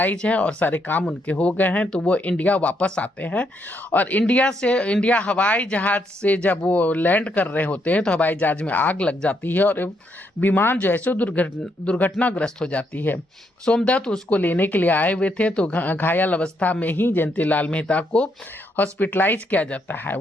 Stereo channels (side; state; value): both; normal; correlation 0.76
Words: है और सारे काम उनके हो गए हैं, तो वो इंडिया वापस आते हैं। और इंडिया हवाई जहाज से जब वो लैंड कर रहे होते हैं तो हवाई जहाज में आग लग जाती है और विमान जो है सो दुर्घटनाग्रस्त हो जाती है। सोमदत्त उसको लेने के लिए आए हुए थे, तो घायल अवस्था में ही जयंती लाल मेहता को हॉस्पिटलाइज किया जाता है।